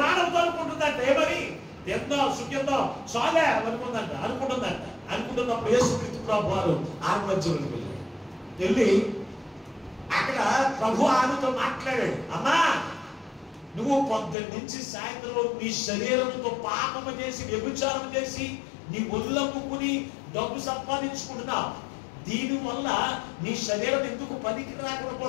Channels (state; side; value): drops out; right; at 14.4 s